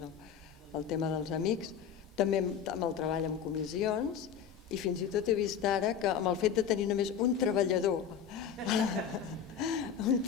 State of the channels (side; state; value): right; quieter; 7.9 dB